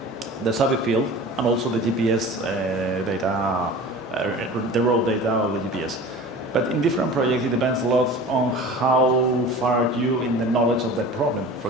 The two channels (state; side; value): normal; both; correlation 0.38